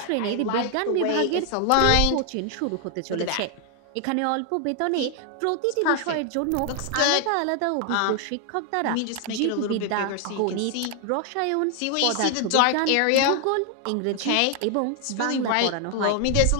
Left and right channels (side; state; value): both; different; correlation 0.00